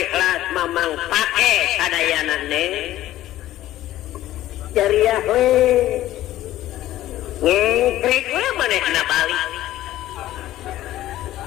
Mamang pake sadayana Neng jariah we ngekrik we manehna balik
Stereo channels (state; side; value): quieter; right; 14.4 dB